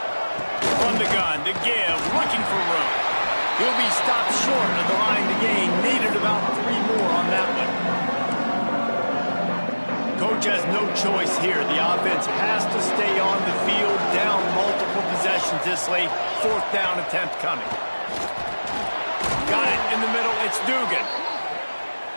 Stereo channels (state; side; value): inverted; both; correlation -1.00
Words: From the gun to give, looking for room. He'll be stopped short of the line to gain. Needed about 3 more on that one. Coach has no choice here. The offense has to stay on the field, down multiple possessions this late. 4th down attempt coming. Got it in the middle. It's Dugan.